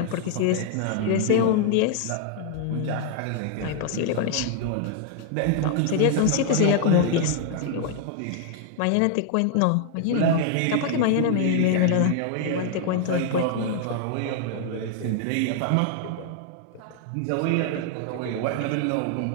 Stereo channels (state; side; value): different; both; correlation 0.00